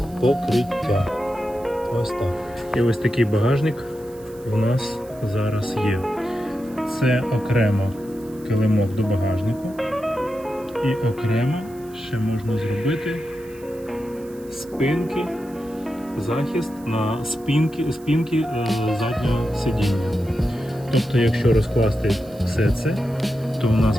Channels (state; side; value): noise; right; hiss, 24 dB below the sound